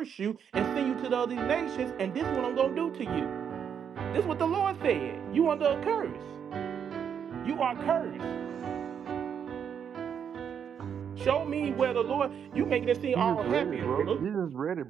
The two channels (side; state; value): left; quieter; 7.8 dB